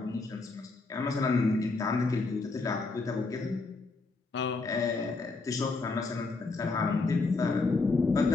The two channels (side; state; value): right; quieter; 3.8 dB